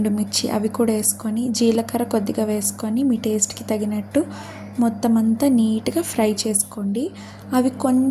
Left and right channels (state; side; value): identical; both; correlation 1.00